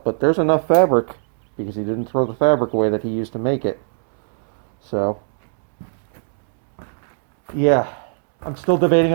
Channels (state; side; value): silent; left; 66 dB below the other